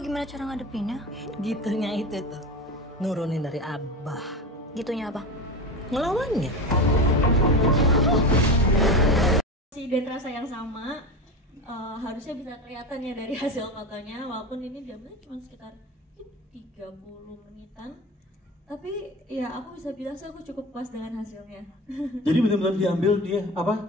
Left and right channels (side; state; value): both; normal; correlation 0.26